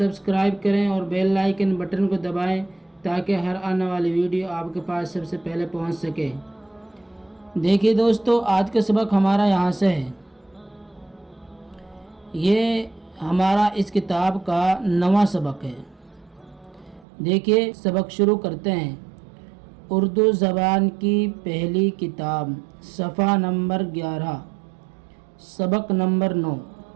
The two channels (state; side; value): drops out; left; at 17.1 s